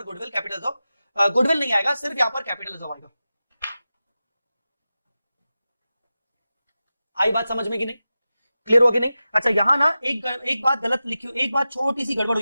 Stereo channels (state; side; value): inverted; both; correlation -0.93